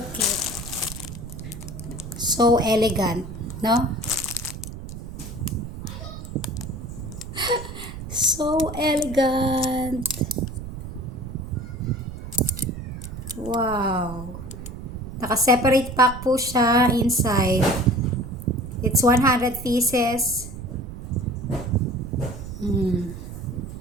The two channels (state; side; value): noise; right; rumble, 10 dB below the sound